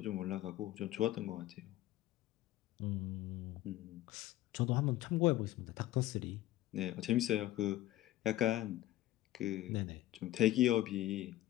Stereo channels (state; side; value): quieter; right; 15.1 dB